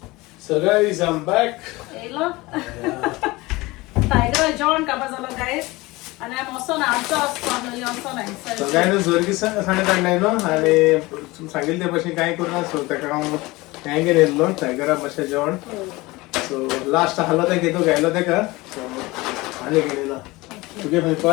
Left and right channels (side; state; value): right; quieter; 21.6 dB